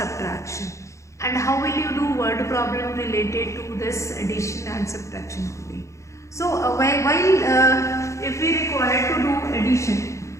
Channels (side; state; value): right; late; 0.15 ms